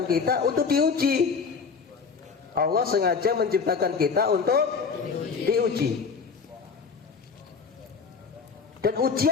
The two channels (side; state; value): right; quieter; 5.4 dB